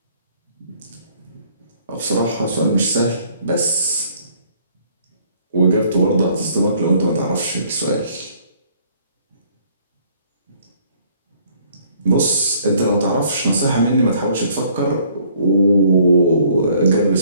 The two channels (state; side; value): inverted; both; correlation -0.61